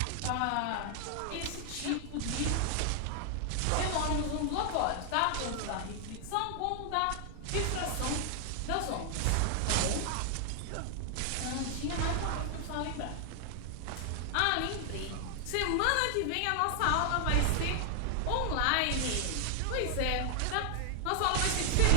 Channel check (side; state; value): both; different; correlation 0.00